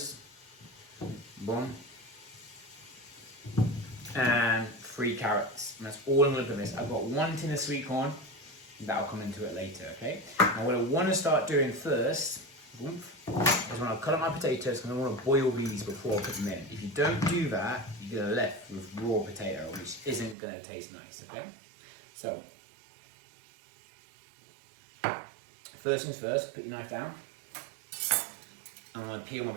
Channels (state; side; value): drops out; left; at 20.4 s